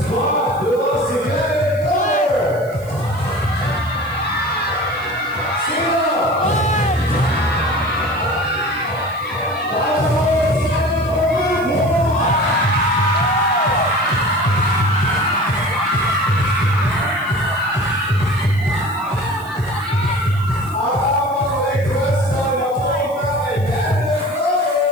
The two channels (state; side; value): noise; right; hiss, 23 dB below the sound